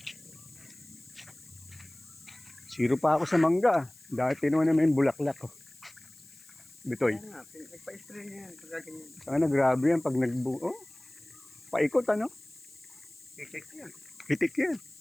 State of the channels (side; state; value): left; noise; hiss, 23 dB below the sound